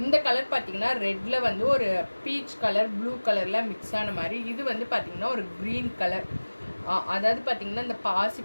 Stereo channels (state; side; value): inverted; both; correlation -1.00